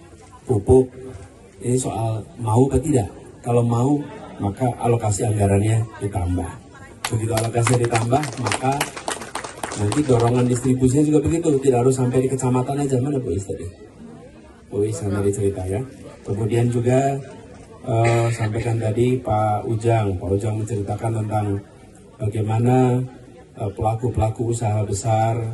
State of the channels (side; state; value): both; identical; correlation 1.00